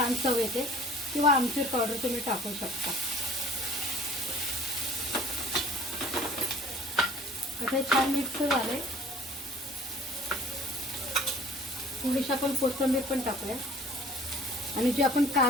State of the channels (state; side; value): normal; both; correlation 0.50